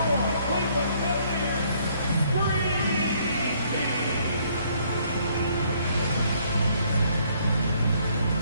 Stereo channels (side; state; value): both; inverted; correlation -0.66